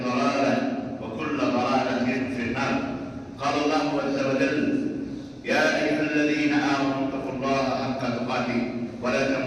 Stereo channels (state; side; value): identical; both; correlation 1.00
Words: ضلالة وكل ضلالة في النار. قال الله عز وجل: يا أيها الذين آمنوا اتقوا الله حق تقاته ولا